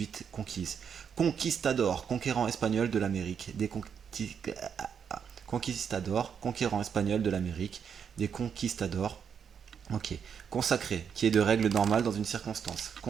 conquise. Conquistador, conquérant espagnol de l'Amérique, conquistador, conquérant espagnol de l'Amérique, des conquistadors. Ok. Consacré, qui est de règle normale dans une circonstance.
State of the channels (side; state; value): left; quieter; 7.3 dB